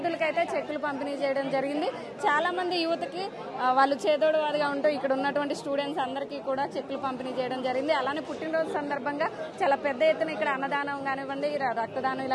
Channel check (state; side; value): identical; both; correlation 1.00